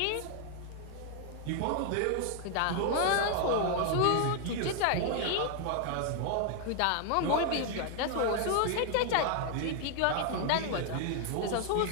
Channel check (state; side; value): different; both; correlation 0.00